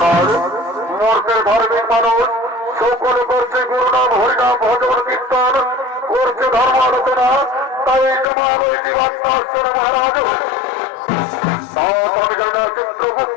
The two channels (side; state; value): right; drops out; at 8.2 s